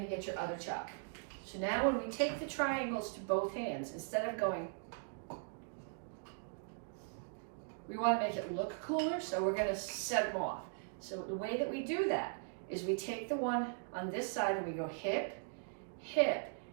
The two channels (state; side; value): silent; left; digital silence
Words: get your other chalk. So now when we take the triangles to both hands, instead of going, we wanna make it look cooler, so we're gonna set them off. So the way that we do that is we take the one on this side and we go hip, hip,